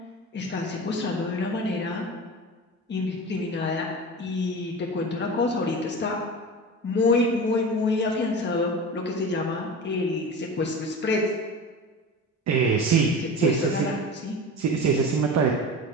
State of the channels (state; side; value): normal; both; correlation 0.31